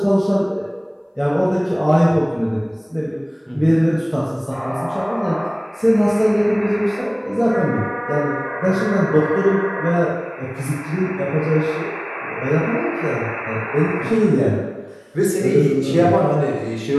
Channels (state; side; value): identical; both; correlation 1.00